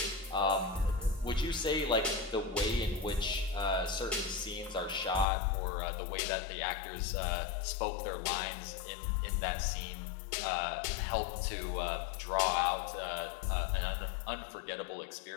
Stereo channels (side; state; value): right; drops out; at 5.2 s